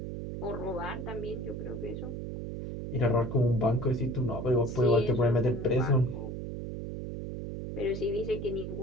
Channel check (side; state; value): right; noise; hum, 6 dB below the sound